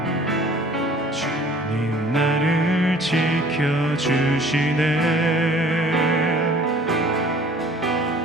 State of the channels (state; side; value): normal; both; correlation 0.51